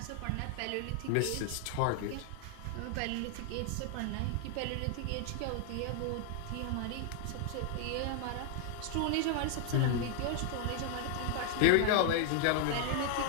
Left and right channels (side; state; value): both; different; correlation 0.00